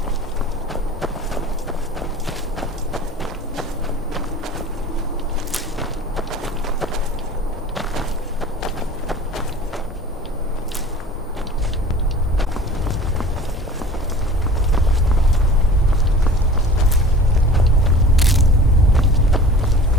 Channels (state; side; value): normal; both; correlation 0.43